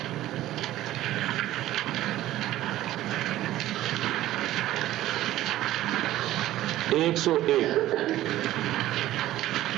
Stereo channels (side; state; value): left; quieter; 14.6 dB